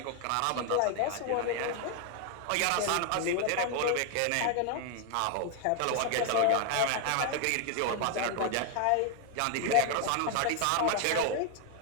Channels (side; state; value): both; different; correlation 0.00